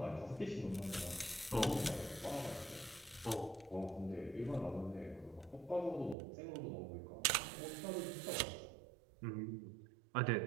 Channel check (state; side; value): drops out; left; at 6.2 s